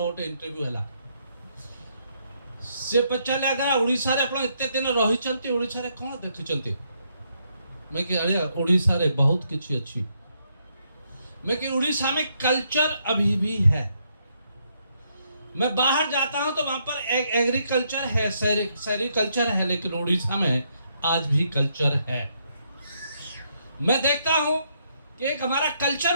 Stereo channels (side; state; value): both; inverted; correlation -0.75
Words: इंटरव्यू है से पचारे अगर ओडिशा रे आपण एते दिन रहिचंती ओडिशा रे कोन देखिचंती मैं कि अरे ओडिशा रे बहुत किछि अछि मैं कि उड़ीसा में कल्चर अभी भी है। मैं बाहर जाता हूं तो वहां पर एग्रीकल्चर है, सेरिकल्चर है, लेकिन उड़ीसा में आज भी कल्चर है। मैं देखता हूं कि एक हमारा कल्चर